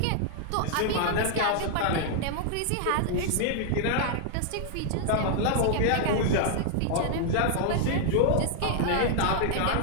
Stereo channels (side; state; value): both; different; correlation -0.01